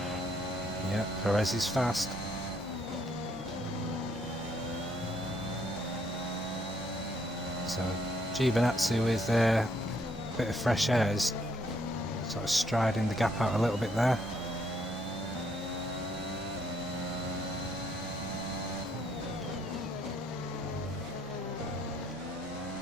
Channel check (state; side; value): normal; both; correlation 0.70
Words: Yeah, Perez is fast. So Giovinazzi with a bit of fresh air is sort of striding the gap out a little bit there.